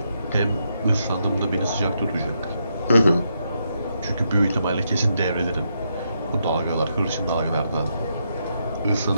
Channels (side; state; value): both; inverted; correlation -0.80